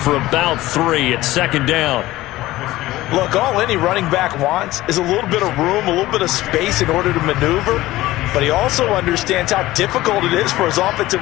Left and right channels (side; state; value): right; quieter; 17.0 dB